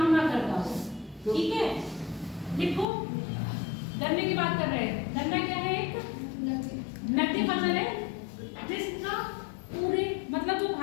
ना करता हो। ठीक है, लिखो। गन्ने की बात कर रहे हैं। गन्ना क्या है, एक नकदी फसल है जिसका पूरे मतलब जो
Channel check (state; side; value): drops out; right; at 2.9 s